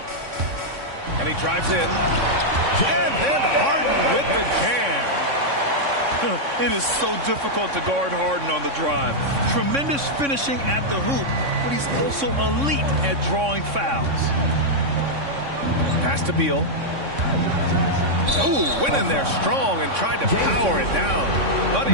And he drives in. And then Harden with the jam. It is so difficult to guard Harden on the drive. Tremendous finishing at the hoop, but he's also elite at drawing fouls. Pass to Beal. Ooh, went in there strong and tried to power it down. But he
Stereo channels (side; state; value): left; late; 3.6 ms